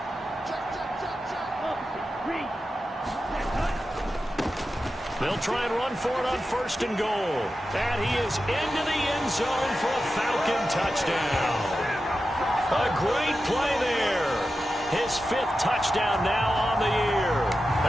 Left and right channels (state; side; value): normal; both; correlation 0.91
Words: They'll try and run for it on 1st and goal. And he is into the end zone for a Falcon touchdown. A great play there. His 5th touchdown now on the year.